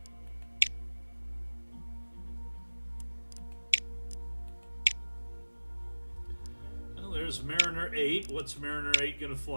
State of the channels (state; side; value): inverted; both; correlation -1.00